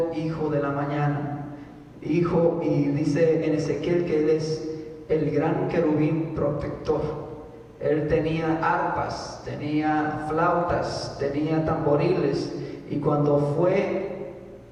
hijo de la mañana. Hijo, y dice en Ezequiel que él es el gran querubín protector. Él tenía arpas, tenía flautas, tenía tamboriles, y cuando fue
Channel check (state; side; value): identical; both; correlation 1.00